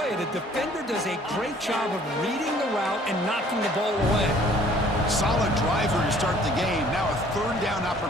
you, the defender does a great job of reading the route and knocking the ball away. Solid driver to start the game. Now a third down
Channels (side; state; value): both; normal; correlation 0.56